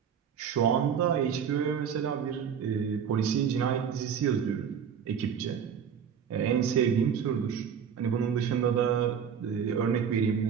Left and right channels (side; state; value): left; quieter; 7.6 dB